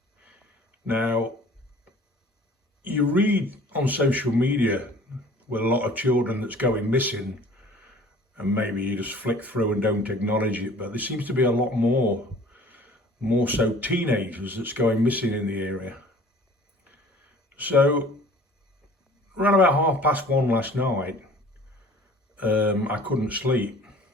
Now, you read on social media with a lot of children that's going missing, and maybe you just flick through and don't acknowledge it, but there seems to be a lot more so teenagers that's going missing in the area. So, around about 1:30 last night, I couldn't sleep,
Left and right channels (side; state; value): both; normal; correlation 0.49